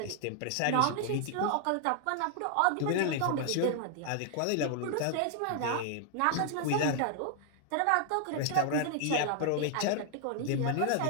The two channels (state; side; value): different; both; correlation 0.00